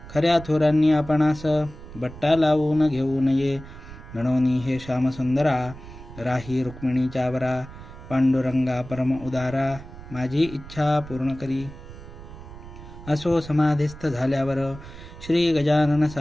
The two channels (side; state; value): right; noise; rumble, 15 dB below the sound